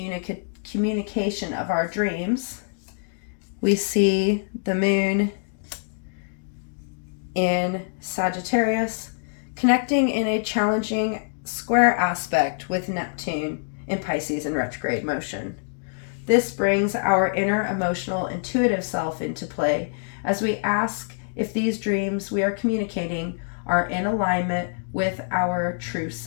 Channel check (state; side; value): silent; right; digital silence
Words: of our dreams, we see the moon in Sagittarius connecting in a challenging square aspect with Neptune in Pisces in retrograde motion. This brings our inner emotional intuitive self into play as we ask if these dreams we are communicating are in alignment with our true